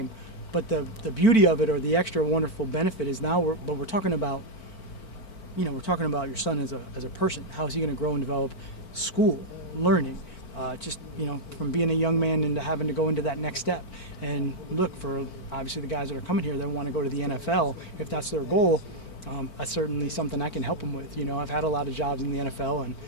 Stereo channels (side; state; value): right; late; 4.4 ms